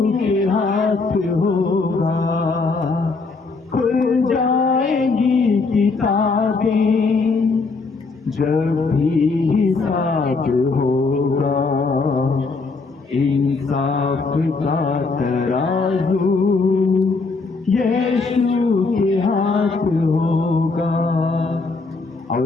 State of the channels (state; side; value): quieter; right; 4.1 dB